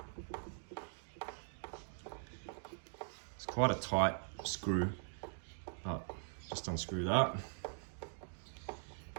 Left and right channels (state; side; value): silent; left; digital silence